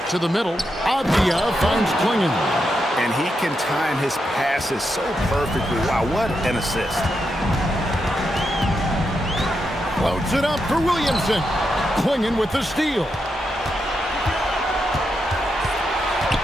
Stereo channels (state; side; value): normal; both; correlation 0.84